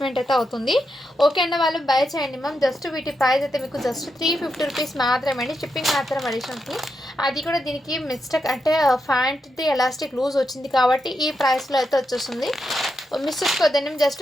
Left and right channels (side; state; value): both; normal; correlation 0.85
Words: అయితే అవుతుంది. ఓకే అండి, వాళ్ళు బై చేయండి మ్యామ్. జస్ట్ వీటి ప్రైస్ అయితే మీకు జస్ట్ 350 రూపీస్ మాత్రమే అండి. షిప్పింగ్ మాత్రం అడిషన్ ఉంటుంది. అది కూడా దీనికి మిస్టేక్ అంటే ఫ్యాంట్ది ఎలాస్టిక్ లూజ్ వచ్చింది కాబట్టి ఈ ప్రైస్లో అయితే వచ్చేస్తుంది. మిస్ చేసుకోవద్దండి.